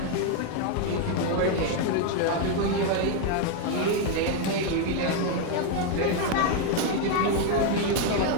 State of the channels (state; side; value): different; both; correlation 0.01